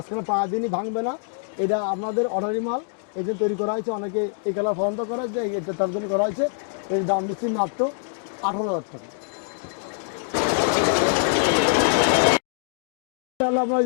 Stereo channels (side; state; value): right; silent; digital silence